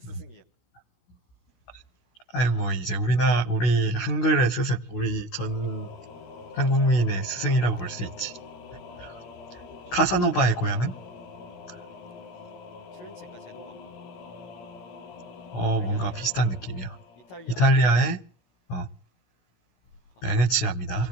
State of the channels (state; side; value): late; right; 16 ms